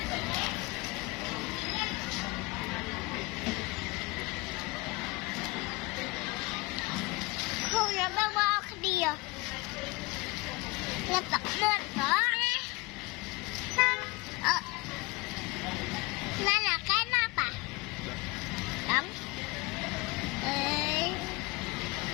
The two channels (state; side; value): quieter; right; 24.7 dB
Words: không là bà ở kia là tập lên đó nên là cái nắp à? Đúng. Ê.